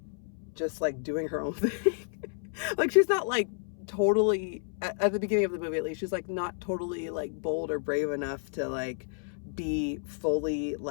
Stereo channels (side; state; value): right; silent; 57 dB below the other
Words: just like doing her own thing. Like, she's not like totally, at the beginning of the movie at least, she's like not totally like bold or brave enough to like be fully